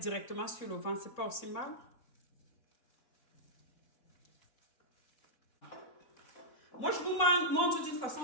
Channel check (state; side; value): late; right; 4.6 ms